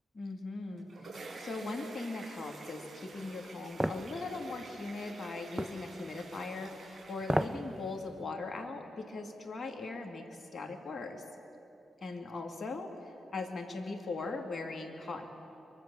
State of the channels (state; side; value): normal; both; correlation 0.87